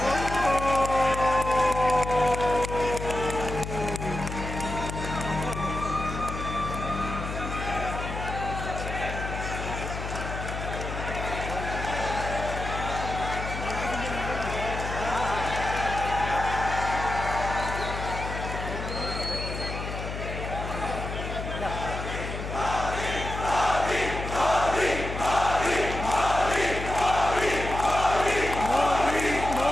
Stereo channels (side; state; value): left; noise; hum, 6 dB below the sound